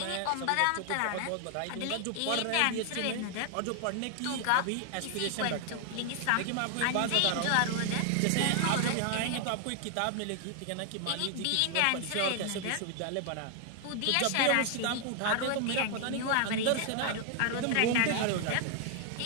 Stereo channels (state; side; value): different; both; correlation 0.00